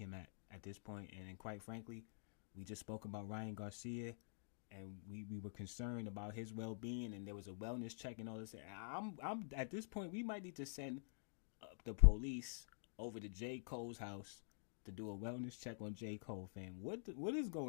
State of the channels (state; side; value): silent; right; digital silence